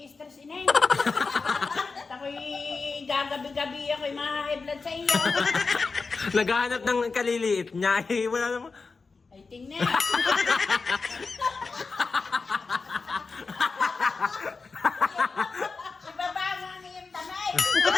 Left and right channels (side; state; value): right; quieter; 4.4 dB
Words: inay. Ako'y gagabi-gabi ako'y ma-high blood sa iyo. Naghahanap ng kaliliit niya. Eh, wala naman. Ay, tingnan. Ibaba mo ang iyong tanay.